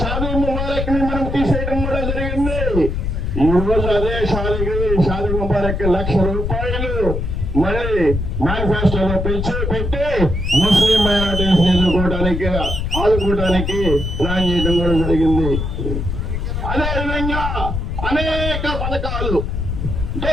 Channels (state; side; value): noise; left; rumble, 2 dB below the sound